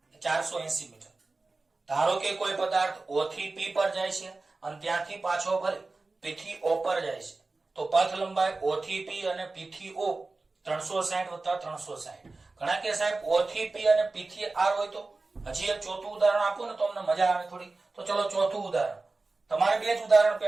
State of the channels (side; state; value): left; quieter; 3.5 dB